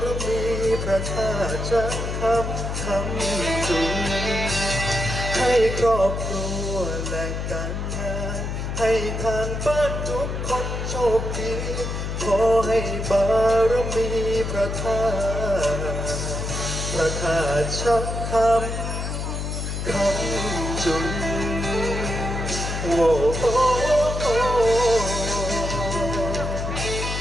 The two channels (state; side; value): noise; left; hum, 3 dB below the sound